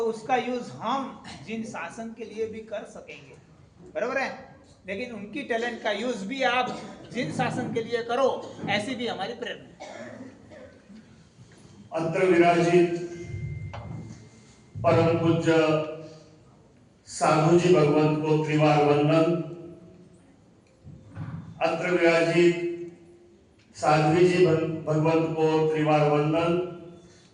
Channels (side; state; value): both; identical; correlation 1.00